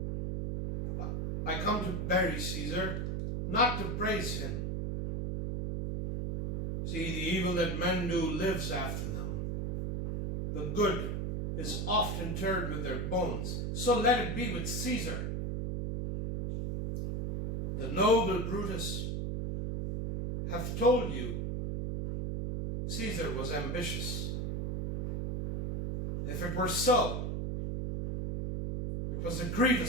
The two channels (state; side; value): noise; right; hum, 1 dB below the sound